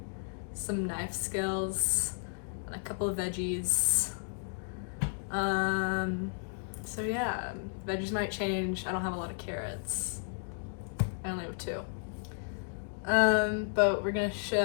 some knife skills and a couple of veggies. So yeah, veggies might change. I don't have a lot of carrots. I only have 2. But we're gonna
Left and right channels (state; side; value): silent; right; digital silence